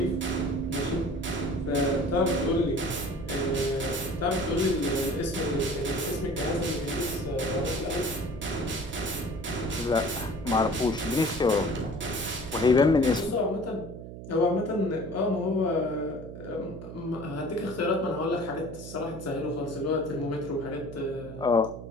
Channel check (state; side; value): noise; right; hum, 11 dB below the sound